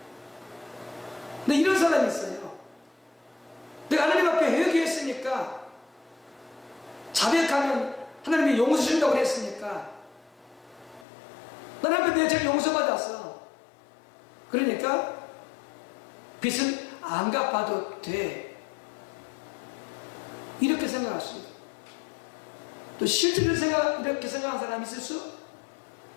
근데 이런 사람이 있어요. 내가 하나님 앞에 회개했으니까, 자백하면 하나님이 용서 주신다고 했으니까, 하나님 앞에 내 죄를 용서받았어. 그러니까 빚은 안 갚아도 돼. 이렇게 생각할 수 있어요. 또 실제로 이렇게 생각하는 사람이 있을 수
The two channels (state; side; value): drops out; right; at 11.1 s